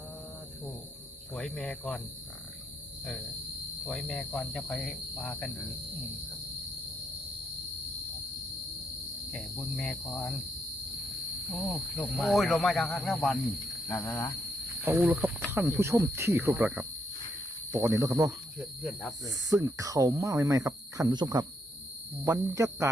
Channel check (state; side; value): normal; both; correlation 0.75